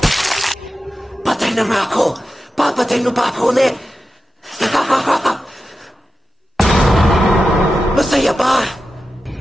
papatay mo pa ako ulit. Masaya ba?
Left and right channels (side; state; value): both; normal; correlation 0.92